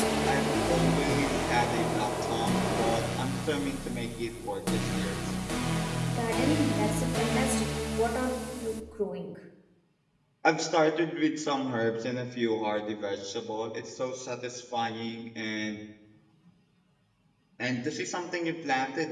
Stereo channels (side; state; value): both; identical; correlation 1.00